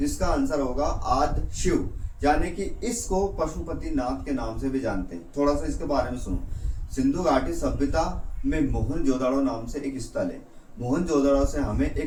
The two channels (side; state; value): both; identical; correlation 1.00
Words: होगा आदि शिव, यानी कि इसको पशुपति नाथ के नाम से भी जानते हैं। थोड़ा सा इसके बारे में सुनो। सिंधु घाटी सभ्यता में मोहनजोदड़ो नाम से एक स्थल है, मोहनजोदड़ो से हमें